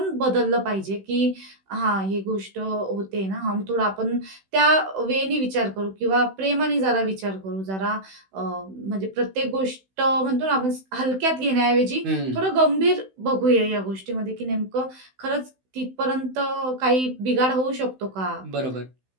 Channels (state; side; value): late; left; 16 ms